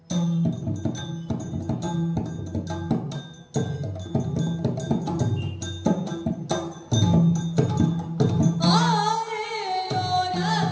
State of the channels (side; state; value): both; identical; correlation 1.00